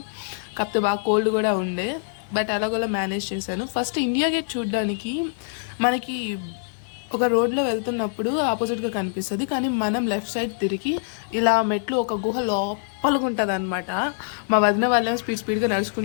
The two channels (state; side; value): silent; right; digital silence